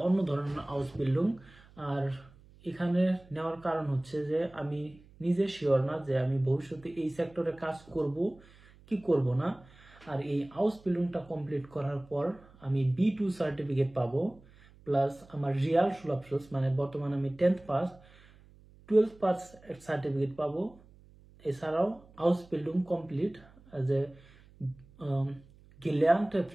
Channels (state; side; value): noise; right; hum, 25 dB below the sound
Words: অন্য ধরনের আউসবিল্ডিং। আর এখানে নেওয়ার কারণ হচ্ছে যে আমি নিজে শিওর না যে আমি ভবিষ্যতে এই সেক্টরে কাজ করব কি করব না। আর এই হাউস বিল্ডিংটা কমপ্লিট করার পর আমি B2 সার্টিফিকেট পাবো, প্লাস আমার রিয়াল সুলভ মানে বর্তমানে আমি 10th pass 12th pass certificate পাবো। এছাড়াও হাউস বিল্ডিং কমপ্লিট অ্যাজ এ গেলার্নte